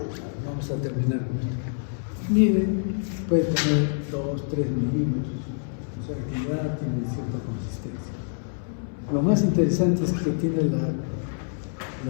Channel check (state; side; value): silent; right; digital silence